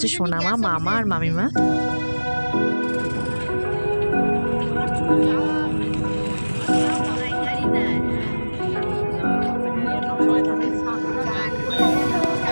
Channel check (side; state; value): both; inverted; correlation -1.00